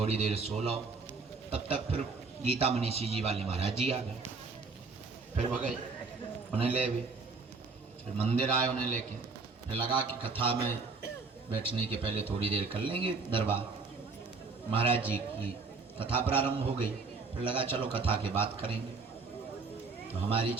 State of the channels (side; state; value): left; quieter; 4.3 dB